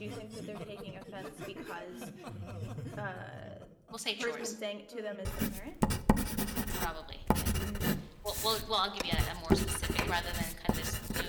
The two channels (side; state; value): both; identical; correlation 1.00